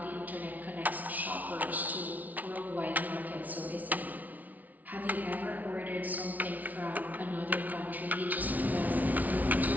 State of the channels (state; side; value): late; left; 0.076 ms